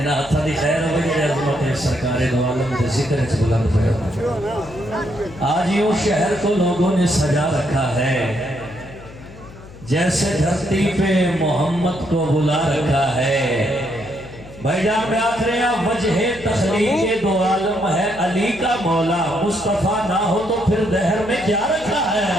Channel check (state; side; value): noise; left; hum, 18 dB below the sound